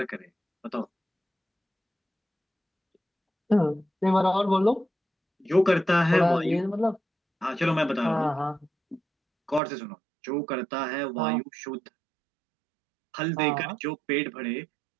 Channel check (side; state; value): left; drops out; at 9.6 s